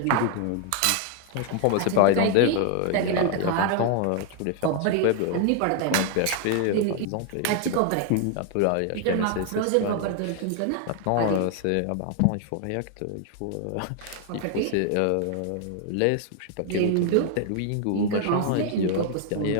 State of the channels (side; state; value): both; different; correlation 0.00